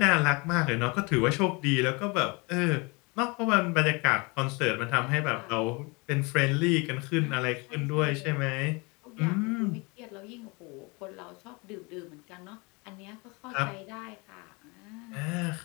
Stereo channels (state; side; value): quieter; right; 28.2 dB